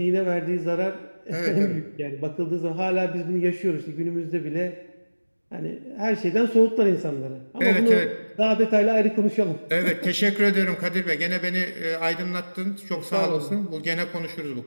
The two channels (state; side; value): inverted; both; correlation -1.00